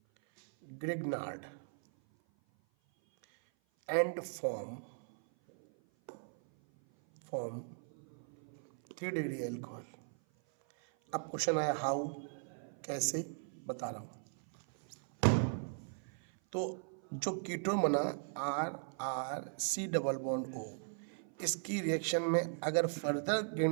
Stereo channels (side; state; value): left; silent; 53 dB below the other